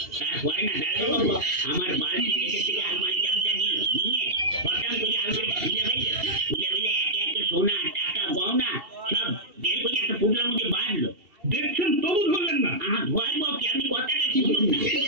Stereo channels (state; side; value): late; left; 2.7 ms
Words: তারপরে না দাঁড়ানো বাবু আমার বাড়ির নিচে থেকে আলমারি চাবিটা নিল, নিয়ে হঠাৎ করে আলমারিটা খুলে ফেললো, খুলে ফেলে একে একে সোনা টাকা গহনা সব বের করে একটা পুটলার মধ্যে বাঁধলো। দেখছেন তবু ধরলেন না? ধরবো কি, আপনি কথাটা শুনুন না।